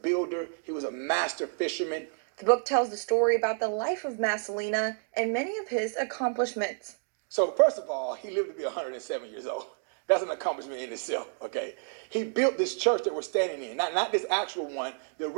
he was a master fisherman. The book tells the story about the life of Massalina and many of his accomplishments. So first of all, he lived to be 107 years old. That's an accomplishment in itself, okay? He built this church that we're standing in, not this actual one. The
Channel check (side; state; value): left; silent; 58 dB below the other